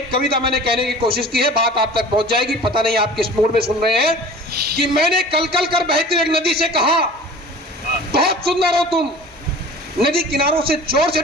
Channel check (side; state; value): both; normal; correlation 0.42